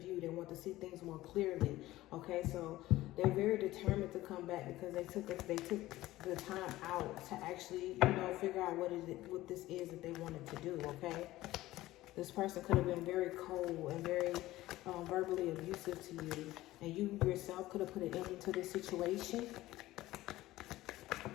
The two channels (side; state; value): right; quieter; 16.6 dB